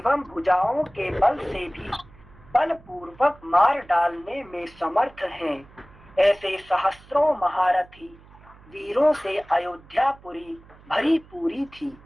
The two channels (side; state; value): right; noise; hum, 24 dB below the sound